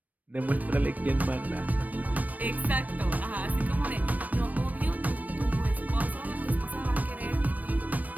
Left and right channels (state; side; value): late; left; 0.076 ms